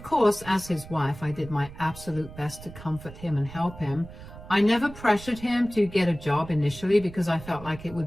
course, as his wife, I did my absolute best to comfort him and help him. I never pressured him to get a job initially because I felt like it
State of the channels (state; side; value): noise; right; rumble, 16 dB below the sound